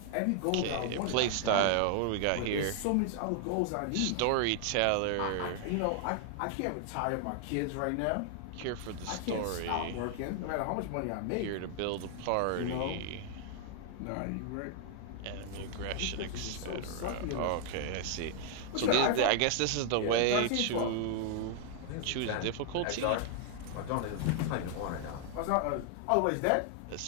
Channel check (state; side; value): different; both; correlation 0.00